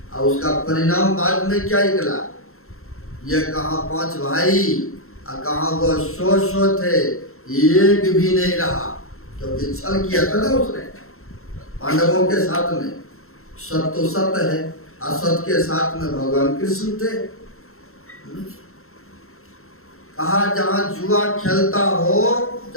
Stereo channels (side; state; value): right; late; 0.62 ms